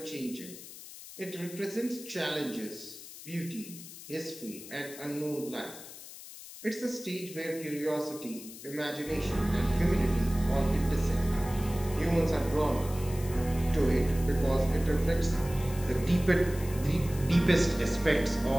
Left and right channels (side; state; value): left; noise; hiss, 15 dB below the sound